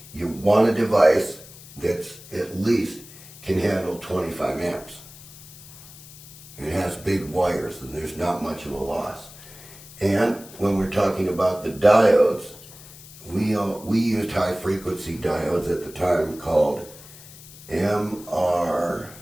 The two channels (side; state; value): left; noise; hiss, 18 dB below the sound